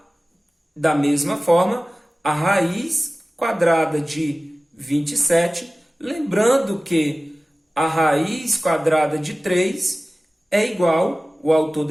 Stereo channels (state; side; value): normal; both; correlation 0.97